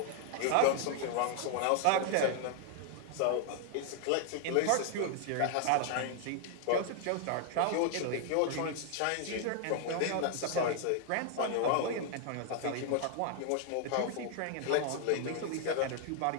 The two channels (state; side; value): different; both; correlation 0.00